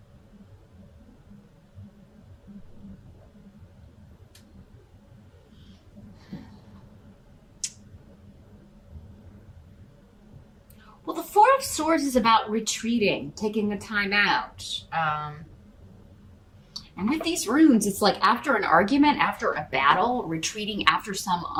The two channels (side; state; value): both; identical; correlation 1.00